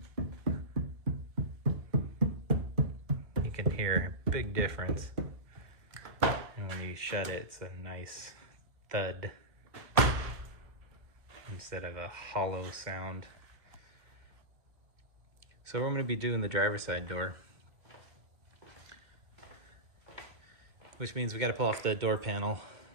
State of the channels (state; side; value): late; left; 1.9 ms